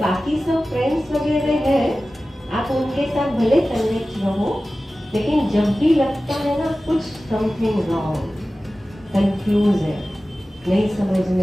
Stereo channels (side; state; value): both; normal; correlation 0.96